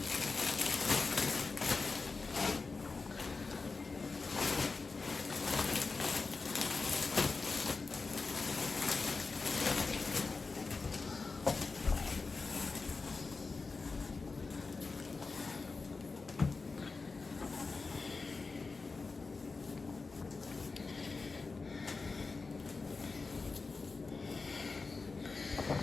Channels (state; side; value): quieter; right; 4.1 dB